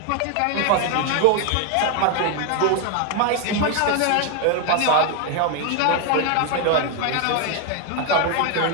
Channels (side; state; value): both; different; correlation 0.01